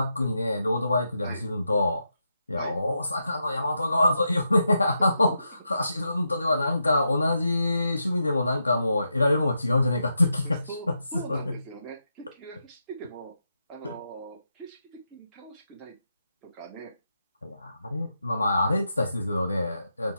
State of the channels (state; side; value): inverted; both; correlation -0.85